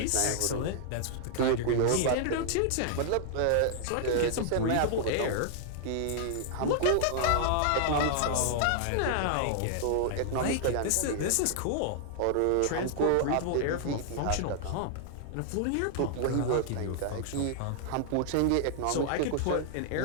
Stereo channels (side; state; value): both; different; correlation -0.01